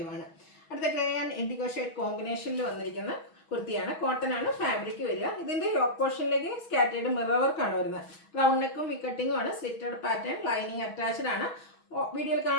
ആണ്. അടുത്ത ഗ്രേ ആൻഡ് ഇൻഡിഗോ ഷെയ്ഡ് കോമ്പിനേഷനിൽ വന്നിരിക്കുന്ന കുർത്തിയാണ്. കോട്ടൺ ആണ് ഫാബ്രിക് വരിക. ഇതിൻ്റെ യോക്ക് പോർഷനിലേക്ക് സ്കാറ്റേർഡ് മിറർ വർക്കാണ് വരുന്നത്. റൗണ്ട് നെക്കും വിക്കട്ടിങ്ങും ആണ്. സ്ലിറ്റഡ് പാറ്റേൺ ലൈനിങ് അറ്റാച്ച്ഡ് ആണ്. വീഡിയോയിൽ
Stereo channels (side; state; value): right; late; 6.2 ms